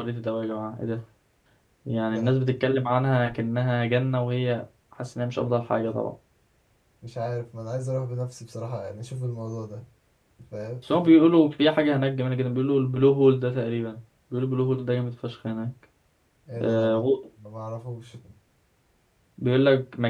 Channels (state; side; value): identical; both; correlation 1.00